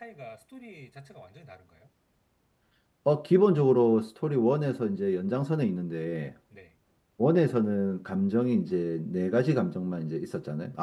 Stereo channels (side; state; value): both; identical; correlation 1.00